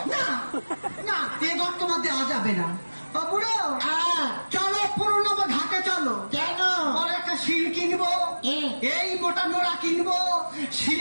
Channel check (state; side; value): inverted; both; correlation -1.00